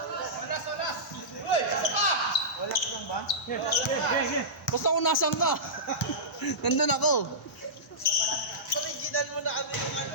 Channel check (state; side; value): normal; both; correlation -0.16